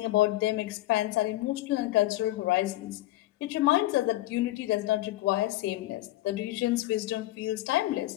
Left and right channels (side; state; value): right; quieter; 16.7 dB